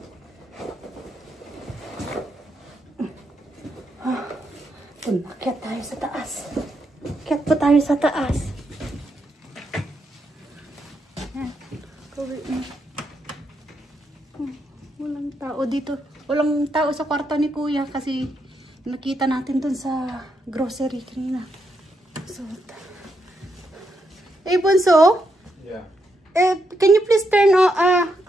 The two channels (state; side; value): normal; both; correlation 0.80